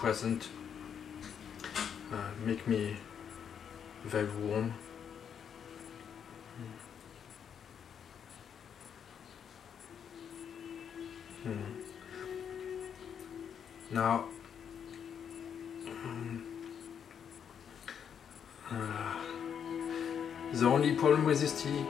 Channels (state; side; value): quieter; right; 7.9 dB